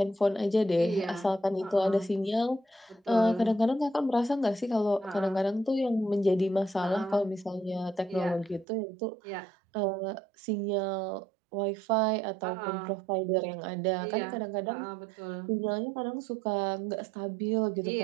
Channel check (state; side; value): drops out; left; at 8.7 s